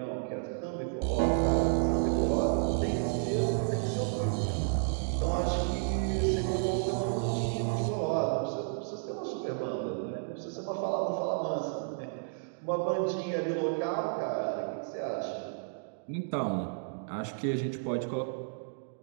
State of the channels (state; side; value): silent; left; digital silence